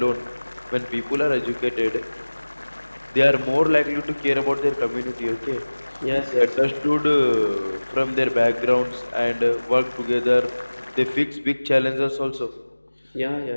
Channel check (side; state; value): both; inverted; correlation -1.00